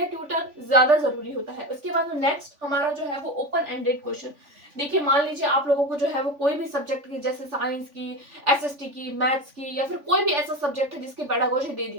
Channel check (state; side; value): late; left; 3.5 ms